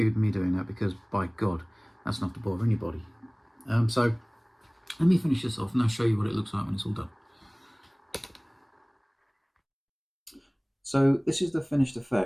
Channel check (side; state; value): both; identical; correlation 1.00